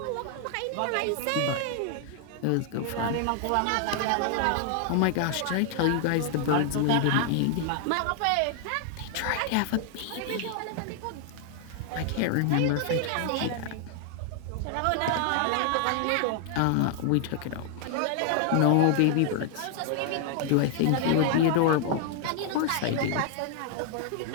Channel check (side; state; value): both; different; correlation 0.00